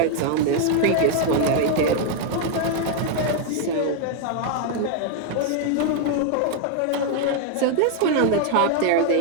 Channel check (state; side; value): different; both; correlation 0.00